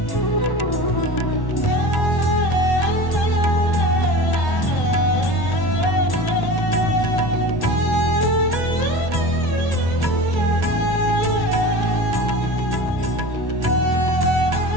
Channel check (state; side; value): late; right; 1.1 ms